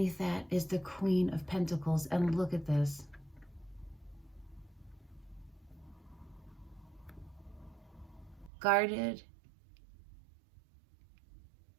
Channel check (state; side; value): drops out; left; at 8.5 s